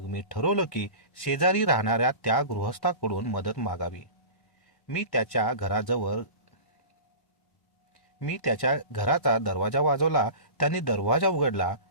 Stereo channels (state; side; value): late; right; 1.1 ms